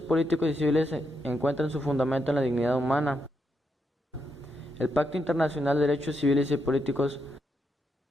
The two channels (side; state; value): both; normal; correlation 0.82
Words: y civiles encuentran su fundamento en la dignidad humana. El Pacto Internacional de Derechos Civiles y Políticos,